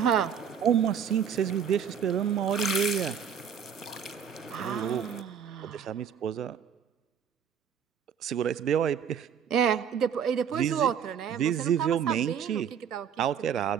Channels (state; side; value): quieter; left; 7.8 dB